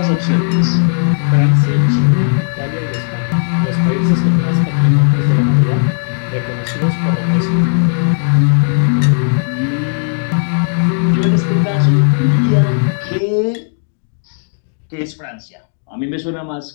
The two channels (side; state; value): right; silent; digital silence